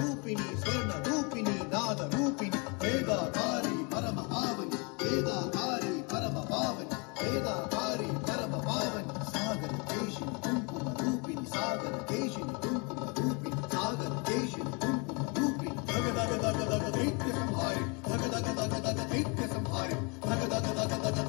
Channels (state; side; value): quieter; right; 32.0 dB